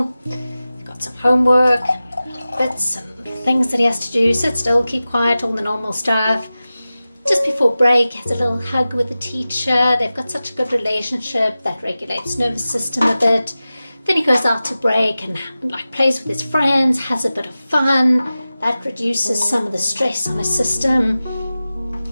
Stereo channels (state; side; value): inverted; both; correlation -0.95